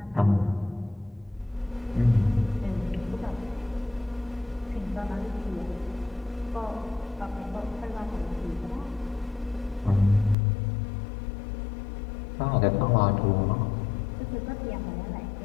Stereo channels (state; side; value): drops out; right; at 10.4 s